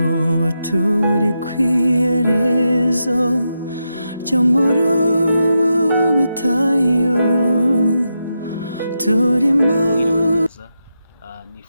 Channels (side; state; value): both; inverted; correlation -0.86